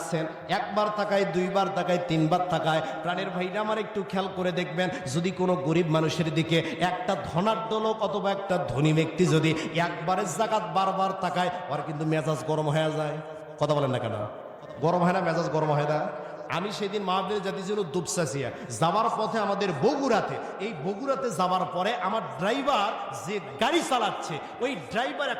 একবার তাকায়, 2বার তাকায়, 3বার তাকায়। প্রাণের ভাইরা আমার একটু খেয়াল করে দেখবেন, যদি কোনো গরিব মানুষের দিকে একটা ধনাঢ্য লোক অথবা একটা ধনী ব্যক্তি যদি একবারের জাকাত বারবার তাকায়, ওর কিন্তু মেজাজ গরম হয়ে যায়। কথা বলেন না কেন? গরম হয় না? মেজাজ গরম হয় না? আমি সেদিন মাহফিলে জাতি ছিল দুপসাসিয়া, যাওয়ার পথে আমাদের বগুড়াতে, এই বগুড়াতে যাওয়ার পরে আমার ড্রাইভার যে গাড়ি চালাচ্ছে ওই ড্রাইভার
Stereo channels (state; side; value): identical; both; correlation 1.00